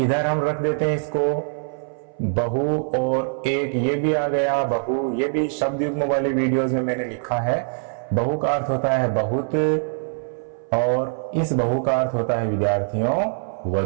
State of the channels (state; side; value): silent; left; 59 dB below the other